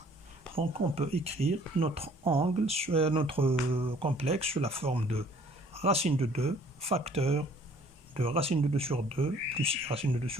Donc on peut écrire notre angle, notre complexe sous la forme de racine de 2, facteur de racine de 2 sur 2 plus i racine de 2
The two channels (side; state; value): both; normal; correlation 0.56